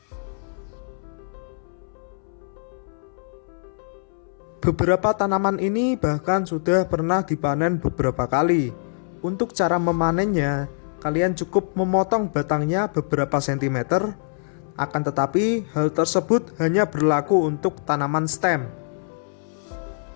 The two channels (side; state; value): right; silent; 63 dB below the other